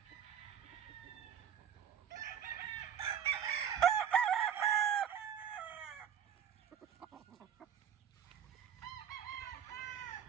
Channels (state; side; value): quieter; left; 8.8 dB